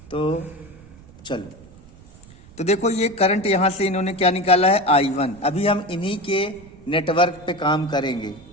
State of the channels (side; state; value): right; noise; rumble, 22 dB below the sound